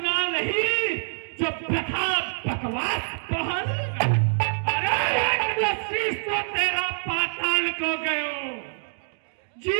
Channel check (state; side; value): silent; left; digital silence